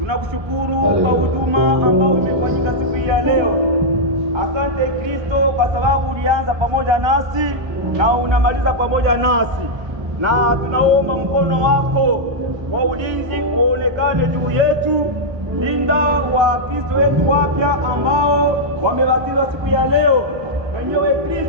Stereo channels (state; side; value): late; left; 1.2 ms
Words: kwa huduma ambao imefanyika siku hii ya leo. Asante Kristo kwa sababu ulianza pamoja nasi na unamaliza pamoja nasi, na tunaomba mkono wako wa ulinzi uonekane juu yetu. Linda Wakristo wetu wapya ambao wamebatizwa siku ya leo, mwenyewe